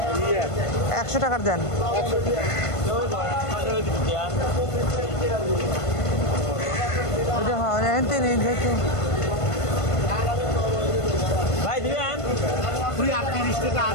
100 টাকার দেন। ওটা হয় এনতে নেই যেহেতু। ভাই দিবেন 38 টাকা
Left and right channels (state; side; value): late; right; 1.5 ms